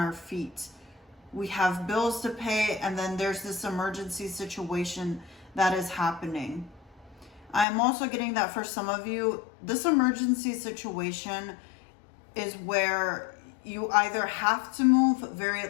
feet? We have bills to pay, and then there's this emergency situation that is happening. I'm also getting that for some of you, this emergency situation is where you either have to move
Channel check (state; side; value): drops out; right; at 7.7 s